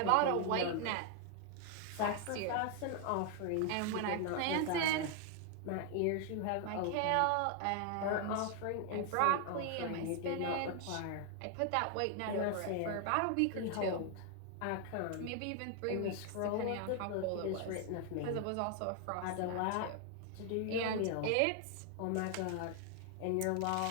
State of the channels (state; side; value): different; both; correlation 0.00